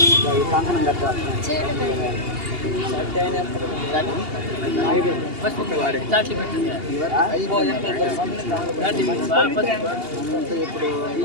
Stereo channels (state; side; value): late; left; 2.8 ms